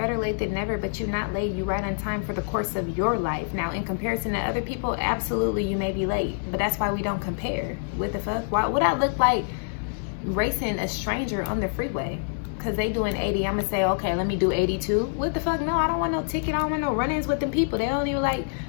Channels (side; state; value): right; silent; digital silence